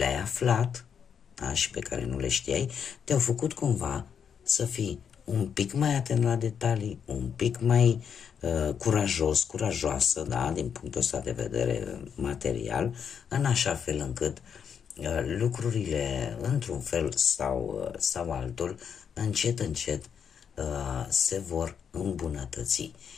aflat, da, și pe care nu le știai, te-au făcut cumva să fii un pic mai atent la detalii, un pic mai curajoasă, da, din punctul ăsta de vedere material, în așa fel încât lucrurile, într-un fel sau altul, încet se vor îmbunătăți.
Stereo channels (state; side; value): quieter; right; 7.4 dB